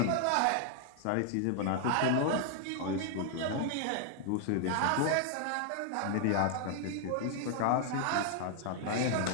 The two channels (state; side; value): different; both; correlation 0.00